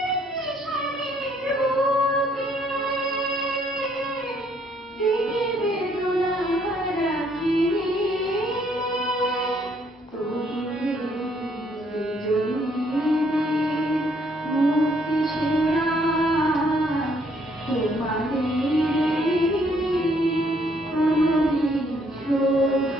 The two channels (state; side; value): normal; both; correlation 0.67